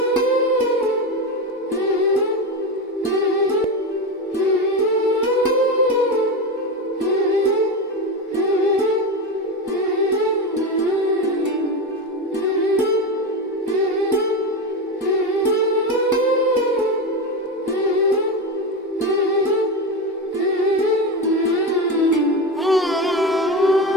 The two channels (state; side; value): normal; both; correlation 0.18